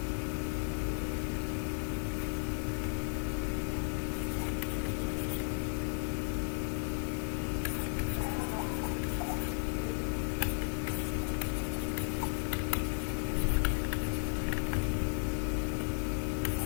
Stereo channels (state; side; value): silent; right; 55 dB below the other